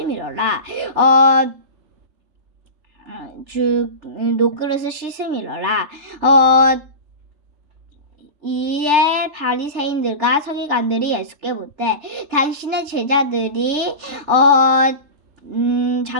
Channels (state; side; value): late; left; 3.4 ms